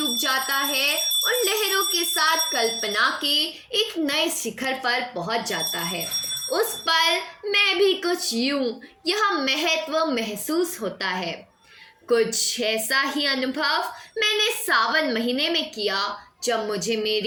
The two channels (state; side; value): identical; both; correlation 1.00